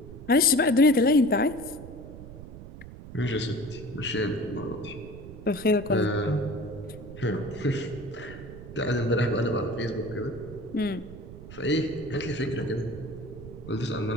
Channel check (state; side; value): noise; right; rumble, 14 dB below the sound